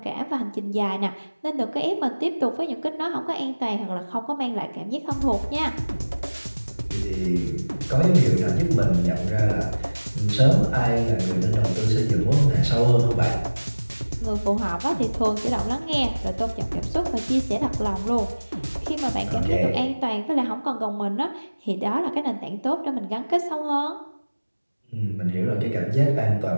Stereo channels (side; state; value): both; inverted; correlation -1.00